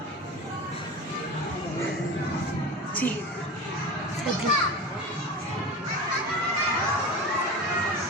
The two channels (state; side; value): normal; both; correlation 0.29